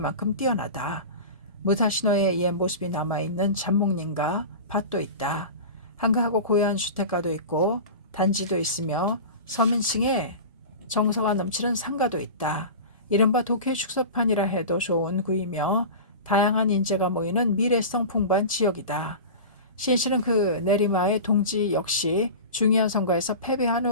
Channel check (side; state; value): both; inverted; correlation -0.31